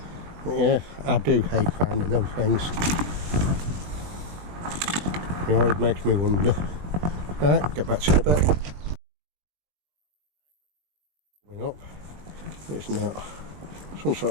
But yeah, I do hate finding them things. It always makes me wonder. Right, get back to you in a bit. Going up. It's not. Some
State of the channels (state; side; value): late; left; 20 ms